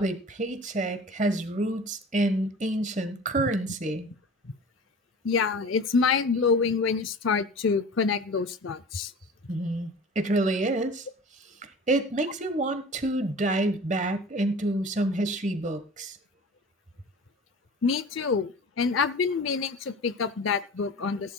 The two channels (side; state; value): both; normal; correlation 0.39